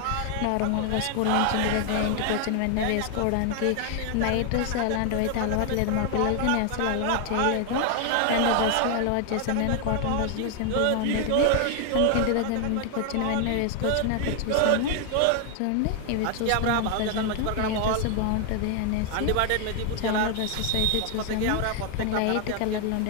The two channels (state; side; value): different; both; correlation 0.00